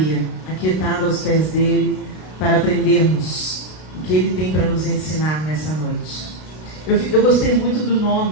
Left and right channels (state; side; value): late; right; 32 ms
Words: aquietada aos pés dEle, para aprendermos o que Ele tem para nos ensinar nessa noite. Eu gostei muito do